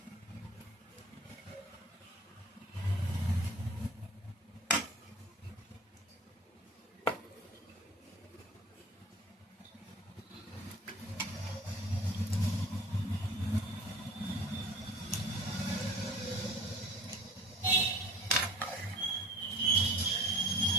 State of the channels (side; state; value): both; normal; correlation 0.45